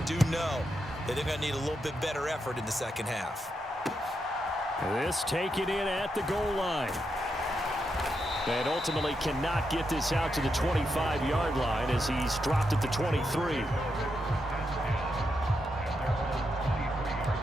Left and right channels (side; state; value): both; normal; correlation 0.84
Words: know that they're going to need a little bit better effort in the second half. This taken in at the goal line. And ultimately cannot get this out to the 25-yard line as he's dropped at the 23.